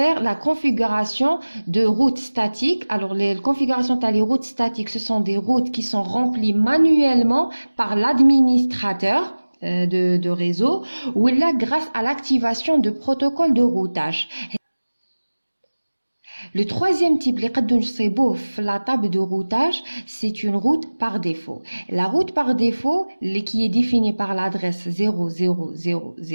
la configuration de routes statiques. Alors, les configurations des routes statiques, ce sont des routes qui sont remplies manuellement par l'administrateur de réseau ou là grâce à l'activation de protocoles de routage. Le troisième type, la table de routage, c'est une route par défaut. La route par défaut, qui est définie par l'adresse 0000,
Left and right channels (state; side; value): inverted; both; correlation -1.00